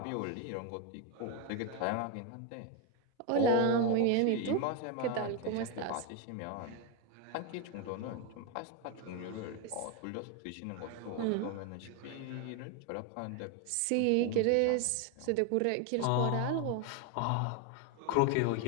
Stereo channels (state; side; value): different; both; correlation 0.02